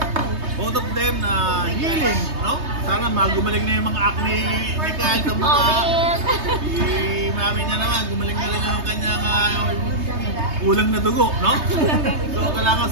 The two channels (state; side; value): late; left; 3.2 ms